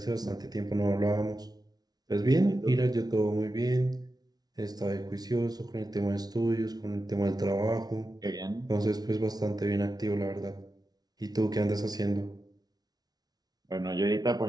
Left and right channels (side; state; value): left; late; 0.19 ms